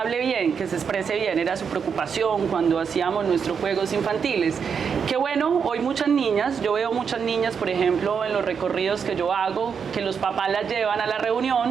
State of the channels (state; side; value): quieter; left; 6.5 dB